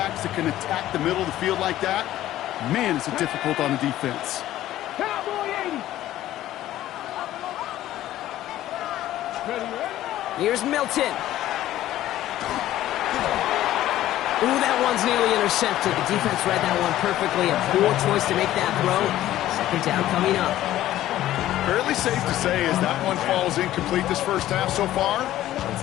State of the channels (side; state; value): right; quieter; 13.9 dB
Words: that can attack the middle of the field like that, man, is it difficult on the defense. Cowboy 80. Here's Milton. Ooh, that one's nearly intercepted. The defense read that one perfectly. A poor choice to make that throw. Second down coming up. Fairly safe to say as that one falls incomplete this first half so far,